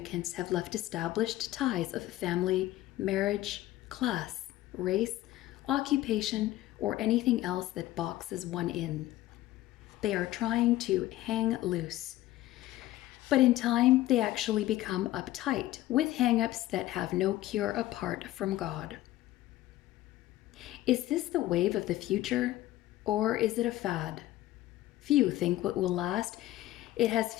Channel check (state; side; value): quieter; right; 15.6 dB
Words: have left established ties of family, marriage, class, race, occupation, or anything else that boxes one in. They are trying to hang loose. But in time, they actually become uptight with hang-ups that have no cure apart from God. Is this the wave of the future, or is it a fad? Few think what will last. It has